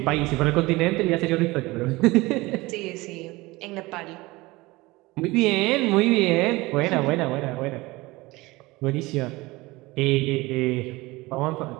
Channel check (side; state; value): left; quieter; 21.3 dB